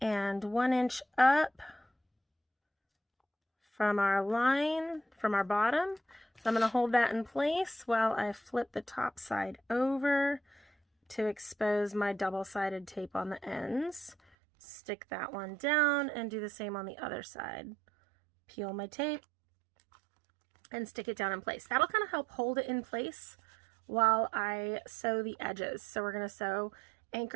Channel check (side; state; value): left; drops out; at 14.2 s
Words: 1 inch up from our line, from our bottom. So I'm going to hold that in place while I flip the top side over to expose my double-sided tape on the ends. Stick that one down and do the same on the other side. Peel my tape and stick it down in place. That'll kind of help hold it in place while I sew the edges. So we're going to sew